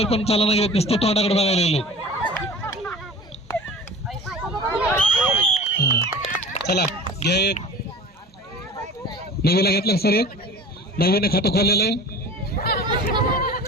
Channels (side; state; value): both; normal; correlation 0.39